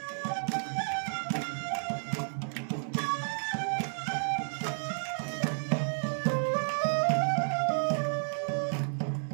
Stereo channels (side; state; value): left; silent; digital silence